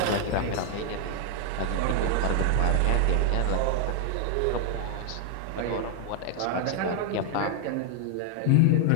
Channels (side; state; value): both; different; correlation 0.00